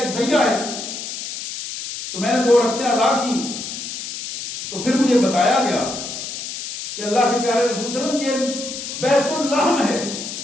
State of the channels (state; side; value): noise; left; hiss, 7 dB below the sound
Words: ذریعہ ہے۔ تو میں نے 2 رکعتیں ادا کی، تو پھر مجھے بتایا گیا کہ اللہ کے پیارے رسول صلی اللہ علیہ وسلم یہ بیت اللحم ہے،